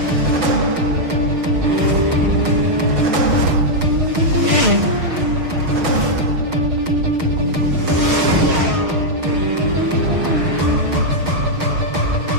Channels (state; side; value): late; left; 6.4 ms